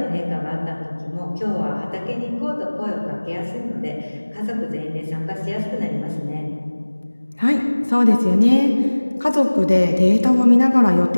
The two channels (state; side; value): inverted; both; correlation -1.00